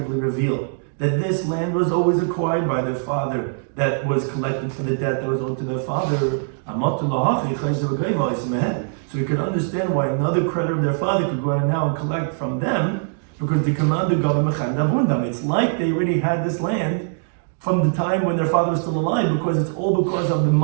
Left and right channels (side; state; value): left; silent; digital silence